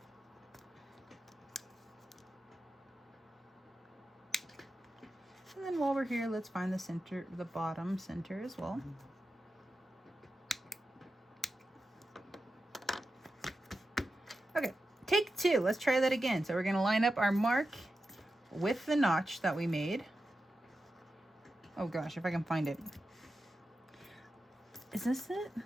And then while we're here, let's find the center, the bottom center as well. Okay, take 2. Let's try that again. So we're going to line up our mark with the notch that we made. Oh gosh, if I can find it. Is this it?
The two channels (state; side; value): normal; both; correlation 0.91